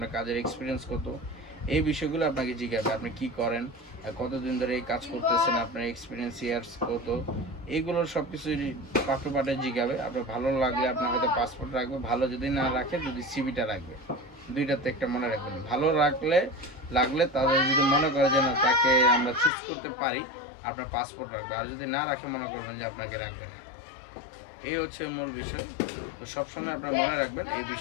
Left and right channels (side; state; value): right; drops out; at 19.5 s